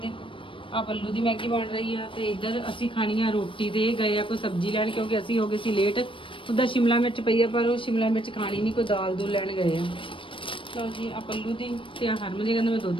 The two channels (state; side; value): late; right; 0.25 ms